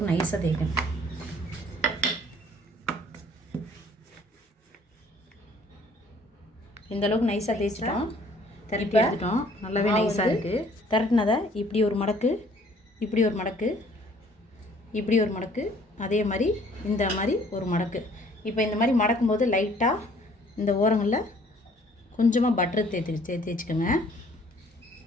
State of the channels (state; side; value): normal; both; correlation 0.58